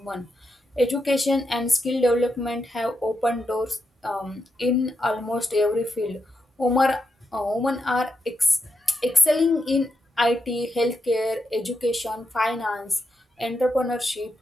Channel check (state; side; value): normal; both; correlation 0.84